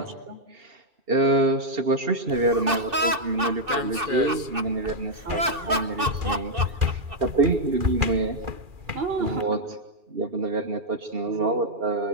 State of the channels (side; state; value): left; late; 2.6 ms